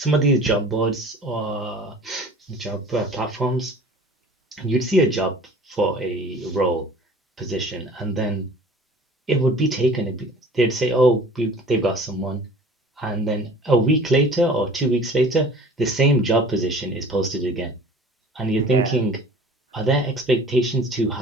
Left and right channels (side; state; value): both; normal; correlation 0.46